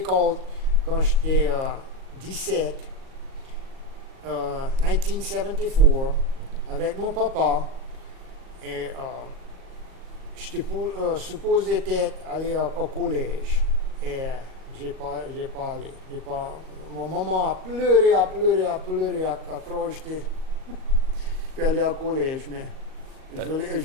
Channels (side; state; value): left; late; 38 ms